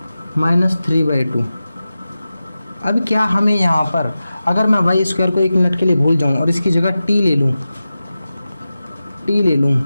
minus 3/2। अब क्या हमें यहाँ पर अगर मैं y² को 1 मिनट के लिए भूल जाऊँ और इसकी जगह t ले लूँ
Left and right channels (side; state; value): both; inverted; correlation -0.94